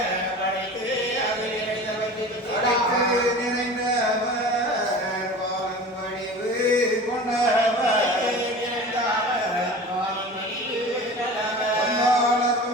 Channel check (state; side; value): normal; both; correlation 0.37